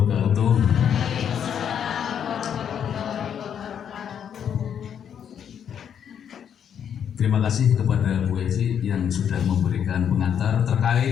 Terima kasih kepada Bu Evi yang sudah memberikan pengantar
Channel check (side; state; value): right; quieter; 8.5 dB